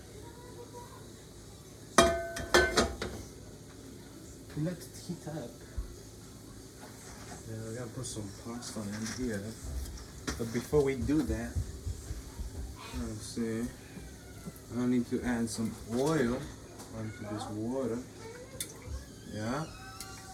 Let it heat up. Yeah, we gotta put some pasta in here. But before we do that, let's see. I need to add some oil onto this water. Yeah.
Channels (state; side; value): identical; both; correlation 1.00